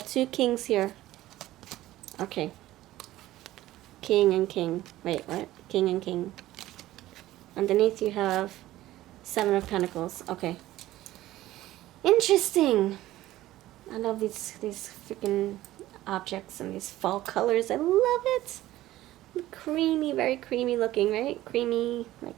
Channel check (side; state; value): left; quieter; 15.5 dB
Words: 2 kings here. Okay. King and king. Wait, what? King and king. Underneath you have 7 of Pentacles. Okay. Interesting. I love these freaking objects and these fall colors. I love it. Creamy, very creamy looking, right? Creamy,